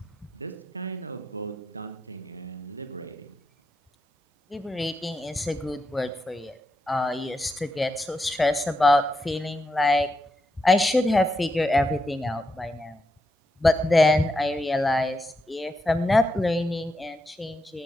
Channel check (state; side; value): normal; both; correlation 0.84